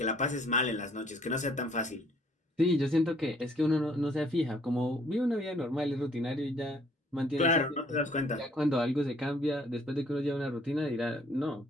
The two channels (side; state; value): both; normal; correlation 0.62